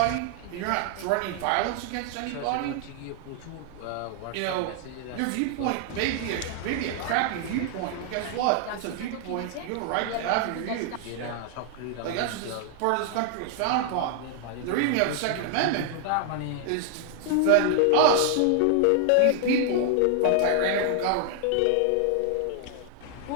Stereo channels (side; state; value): both; different; correlation 0.00